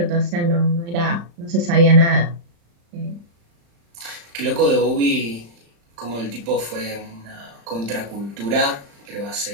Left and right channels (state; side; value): late; left; 35 ms